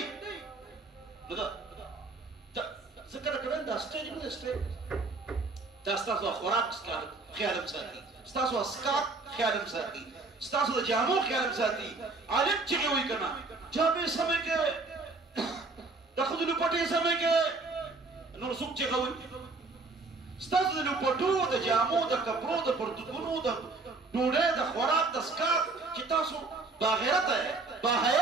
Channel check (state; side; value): quieter; left; 3.7 dB